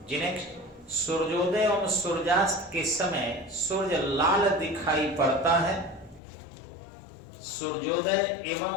नेक्स्ट, सूर्योदय एवं सूर्यास्त के समय सूर्य लाल दिखाई पड़ता है, सूर्योदय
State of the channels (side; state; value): right; drops out; at 6.2 s